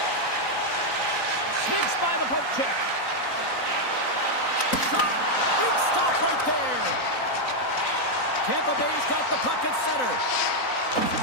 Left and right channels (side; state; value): right; late; 3.9 ms